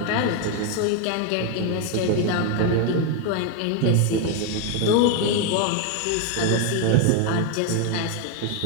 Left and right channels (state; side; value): different; both; correlation 0.01